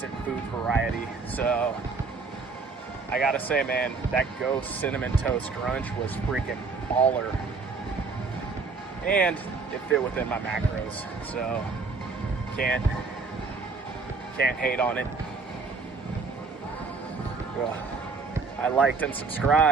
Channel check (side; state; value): left; quieter; 4.4 dB